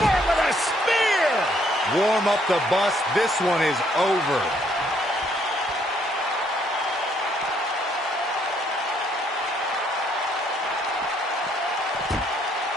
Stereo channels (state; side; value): normal; both; correlation 0.68